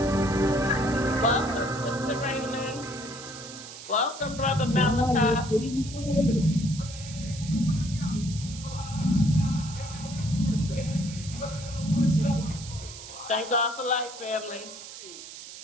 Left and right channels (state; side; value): noise; right; hiss, 13 dB below the sound